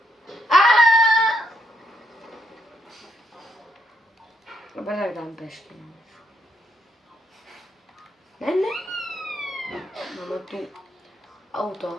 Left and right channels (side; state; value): both; normal; correlation 0.76